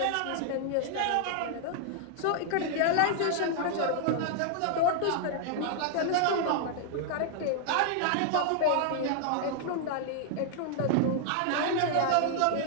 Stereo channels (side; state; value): both; different; correlation -0.01